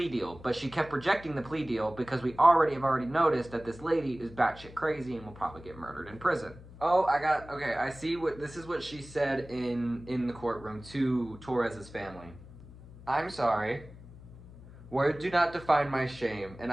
deal. But she kept rejecting the plea deal because we have already noticed that this lady is batshit crazy and will probably get murdered in prison. Oh, okay, I see this is what she said in the courtroom to Torres's family. I'm sorry. Words do not define my shame, and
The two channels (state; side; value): noise; left; hum, 18 dB below the sound